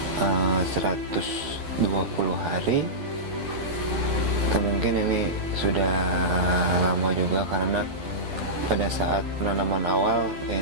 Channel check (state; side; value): late; left; 12 ms